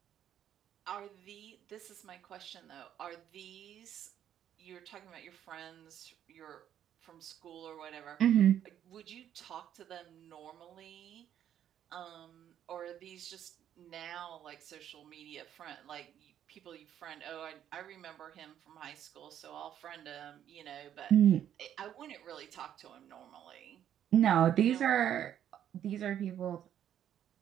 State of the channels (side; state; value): left; quieter; 10.3 dB